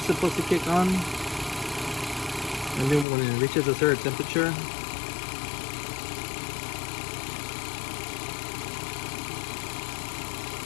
supposed to kick on, and then when it reaches a certain temperature.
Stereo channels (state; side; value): drops out; right; at 3.1 s